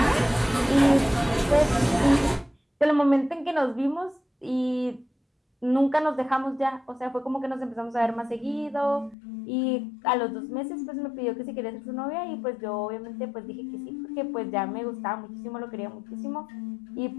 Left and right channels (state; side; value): drops out; right; at 9.2 s